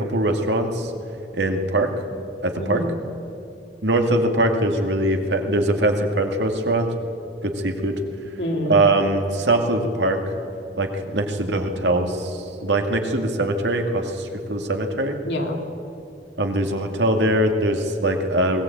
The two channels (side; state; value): both; normal; correlation 0.24